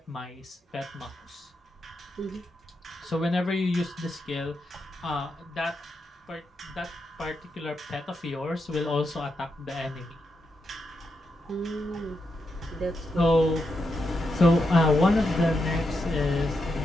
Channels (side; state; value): both; normal; correlation 0.85